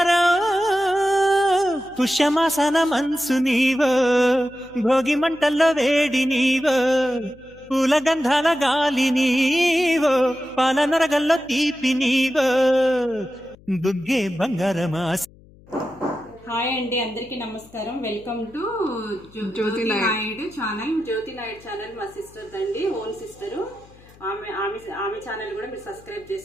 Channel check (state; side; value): noise; left; hum, 25 dB below the sound